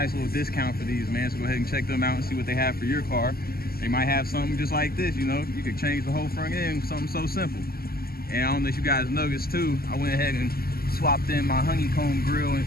little discount for these, man. So go ahead and check them out and see what they have for your car. They might have something just like this, you know. You could change the whole front end, something so simple. And I don't know if you guys noticed too, I went ahead and swapped in my honeycomb grill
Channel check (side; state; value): right; late; 0.44 ms